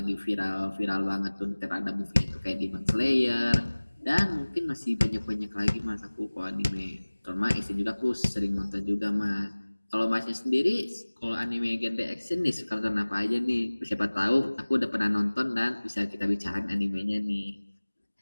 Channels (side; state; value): both; inverted; correlation -1.00